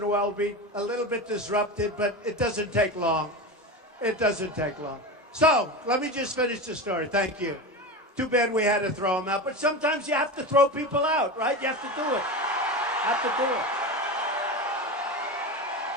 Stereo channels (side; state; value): both; normal; correlation 0.23